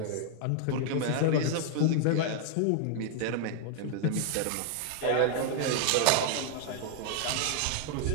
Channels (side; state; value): both; different; correlation 0.00